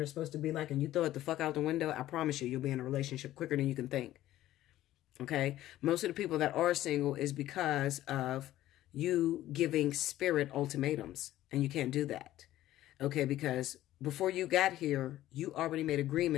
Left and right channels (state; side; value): quieter; right; 14.2 dB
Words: is supposed to be like and you throw it the fuck out the window, I promise you'll be in a relationship quicker than you can think. Okay? Most of the people that are single is because of you giving Spirit ultimatums, and you can't do that. Okay? Because before you got here, you already made